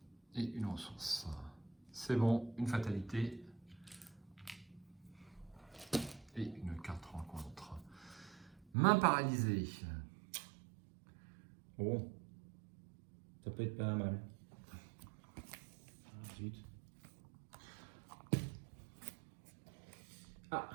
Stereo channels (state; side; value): drops out; left; at 8.7 s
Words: Et une ressource. C'est bon, une fatalité. Et une carte rencontre. Main paralysée. Bon. Ça peut être pas mal. Ah, zut. Ah,